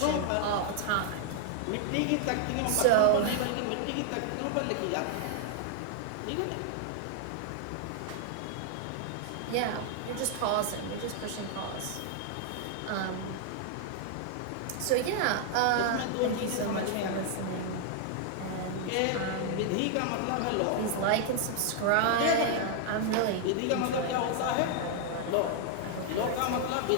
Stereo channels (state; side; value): different; both; correlation 0.00